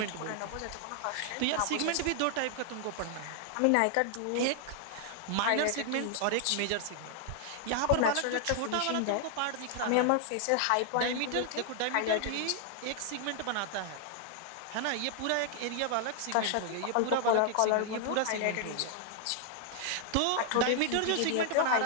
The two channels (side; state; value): both; different; correlation 0.00